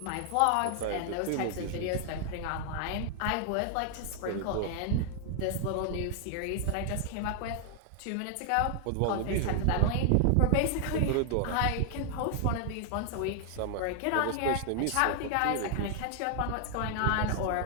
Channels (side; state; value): both; different; correlation 0.00